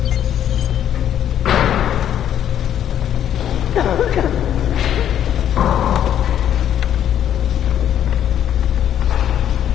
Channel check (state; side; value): quieter; right; 10.3 dB